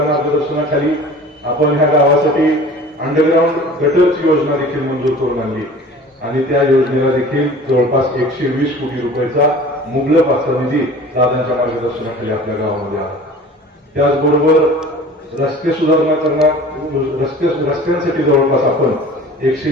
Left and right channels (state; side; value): normal; both; correlation 0.43